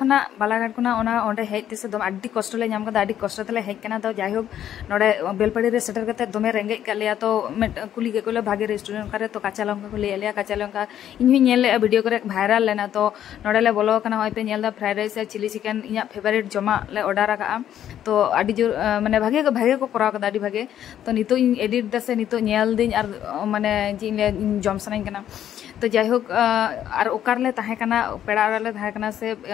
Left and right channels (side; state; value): right; quieter; 10.7 dB